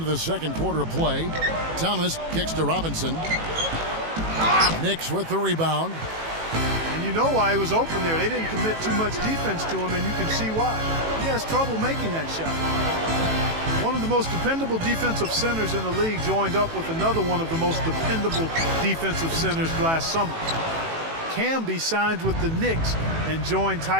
the second quarter of play. Thomas kicks to Robinson. Knicks with the rebound. And you know why he was open there. They didn't commit too much defense to him, and you can see why. He has trouble making that shot. One of the most dependable defensive centers in the league joined up with another one of the most dependable defensive centers last summer. Camby signed with the Knicks and joined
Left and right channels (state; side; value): late; left; 18 ms